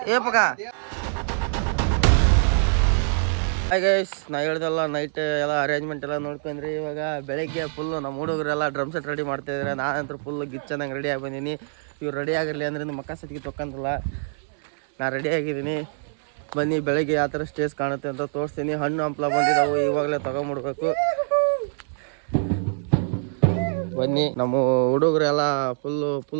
ಏಪಕ ಗೈಸ್ ನಾ ಹೇಳ್ದಲ್ಲ ನೈಟ್ ಎಲ್ಲ ಅರೇಂಜ್ಮೆಂಟ್ ಎಲ್ಲ ನೋಡ್ಕೊಂಡ್ರಿ ಇವಾಗ ಬೆಳಗ್ಗೆ ಫುಲ್ಲು ನಮ್ಮ ಹುಡುಗರೆಲ್ಲ ಡ್ರಮ್ ಸೆಟ್ ರೆಡಿ ಮಾಡ್ತಾಯಿದ್ದಾರೆ ನಾನಂತೂ ಫುಲ್ಲು ಗಿಚ್ಚಂದಂಗೆ ರೆಡಿ ಆಗಿ ಬಂದೀನಿ ಇವ್ರು ರೆಡಿ ಆಗಿರಲಿ ಅಂದ್ರೆ ಮಕ್ಕ ಸತಿಗೆ ತೊಕ್ಕಂತಲ್ಲ ನಾ ರೆಡಿ ಆಗಿದ್ದೀನಿ ಬನ್ನಿ ಬೆಳಗ್ಗೆ ಯಾವ ಥರ ಸ್ಟೇಜ್ ಕಾಣುತ್ತೆ ಅಂತ ತೋರಿಸ್ತೀನಿ ಹಣ್ಣು ಹಂಪ್ಲ ಬಂದಿದ್ದಾವೆ ಇವಾಗಲೇ ತೊಗೊಂಬಿಡ್ಬೇಕು ಬನ್ನಿ ನಮ್ಮ ಹುಡುಗರು ಎಲ್ಲ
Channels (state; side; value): silent; left; digital silence